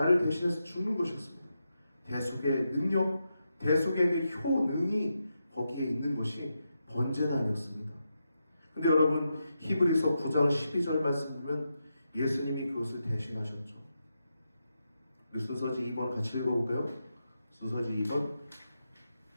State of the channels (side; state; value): both; inverted; correlation -0.86